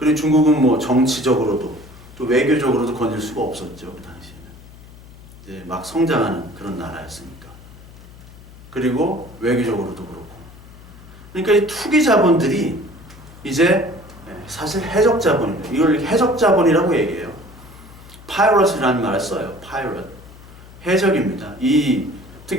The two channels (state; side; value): noise; left; hum, 20 dB below the sound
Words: 중국은 뭐 정치적으로도 또 외교적으로도 건들 수가 없었죠. 그 당시에는 이제 막 성장하는 그런 나라였으니까. 그리고 외교적으로도 그렇고. 그러니까 이 투기 자본들이 이제 사실 해적 자본입니다. 이걸 해적 자본이라고 얘기해요. 파이러트라는 말을 써요. 파이러트. 해적입니다. 이